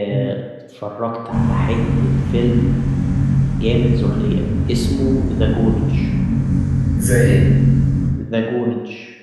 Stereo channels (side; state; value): both; identical; correlation 1.00